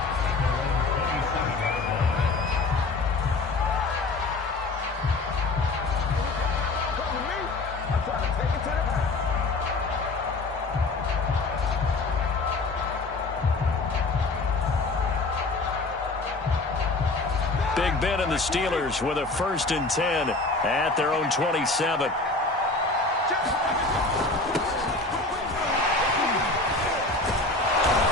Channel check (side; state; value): right; quieter; 3.3 dB